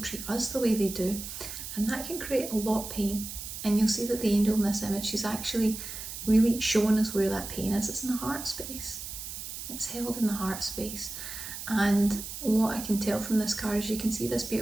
us the way they do. And that can create a lot of pain. And you'll see that the angel in this image, she's actually really showing us where that pain is. It's in the heart space. It's held in the heart space. And what I can tell from this card is you can see this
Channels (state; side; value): noise; right; hiss, 8 dB below the sound